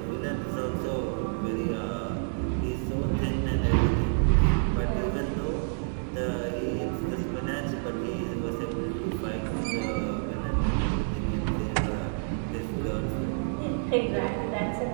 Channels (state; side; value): silent; left; digital silence